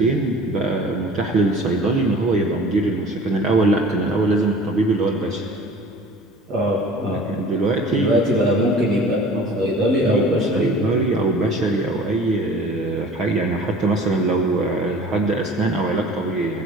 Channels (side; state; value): both; normal; correlation 0.45